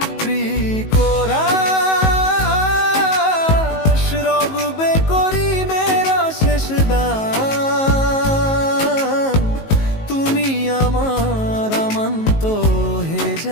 তুমি আমার আমান্ত হে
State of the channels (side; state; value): right; late; 19 ms